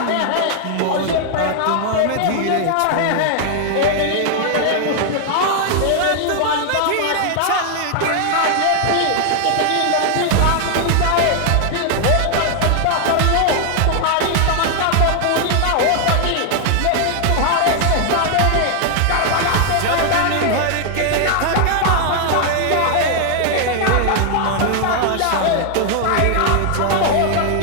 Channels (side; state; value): both; different; correlation 0.00